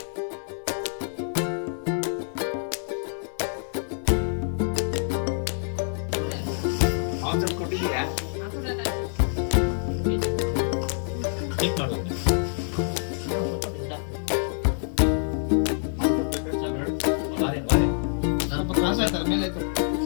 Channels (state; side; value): silent; right; digital silence